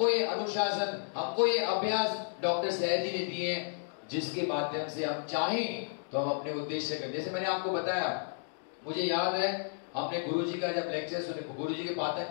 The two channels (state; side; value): silent; right; digital silence